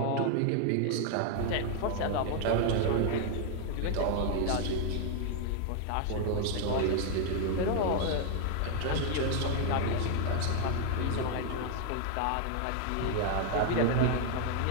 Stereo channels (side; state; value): both; different; correlation 0.00